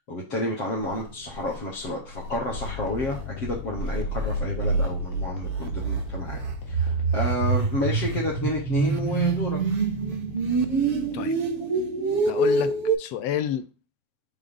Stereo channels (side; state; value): right; late; 7.0 ms